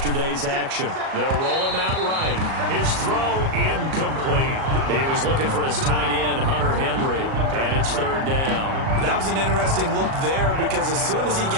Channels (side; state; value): left; late; 37 ms